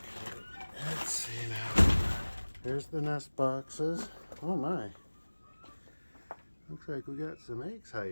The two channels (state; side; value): inverted; both; correlation -1.00